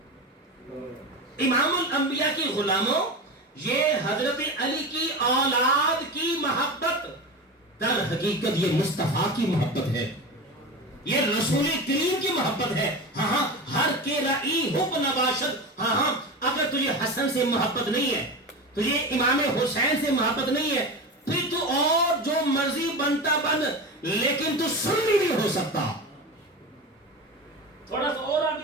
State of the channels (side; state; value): both; normal; correlation 0.26